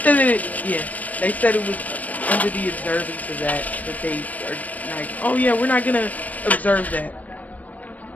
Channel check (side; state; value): right; late; 0.074 ms